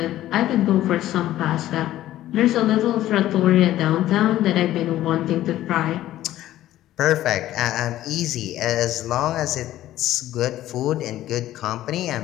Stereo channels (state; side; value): quieter; right; 13.9 dB